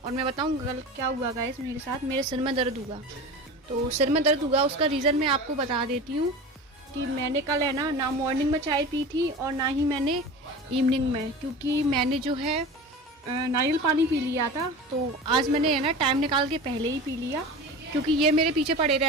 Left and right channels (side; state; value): both; normal; correlation 0.32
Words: मैं बताऊँ कल क्या हुआ गाइस मेरे साथ, मेरे सिर में दर्द हुआ। तो सिर में दर्द हुआ उसका रीज़न मैं आपको बता देती हूँ कि मैंने कल है ना मॉर्निंग में चाय पी थी और ना ही मैंने इवनिंग में, क्योंकि मैंने जो है नारियल पानी पी लिया था। तो आज मैंने है ना टाइम निकाल के पहले ही पी लिया, क्योंकि ये मेरे पीछे पड़े